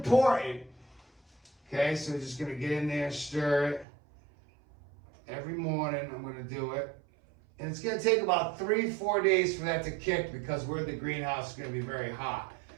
okay, so we're just going to get in there and stir it. Every morning I'm going to do it. And it's going to take about 3-4 days for that to kick because we're in the greenhouse, it's going to be very hot.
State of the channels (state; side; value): drops out; left; at 3.9 s